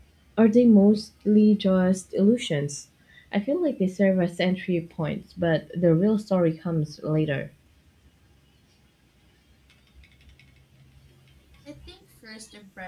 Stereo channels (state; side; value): identical; both; correlation 1.00